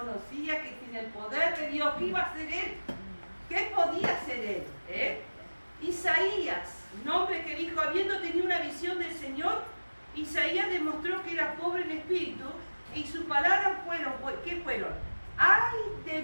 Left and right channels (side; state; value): both; inverted; correlation -1.00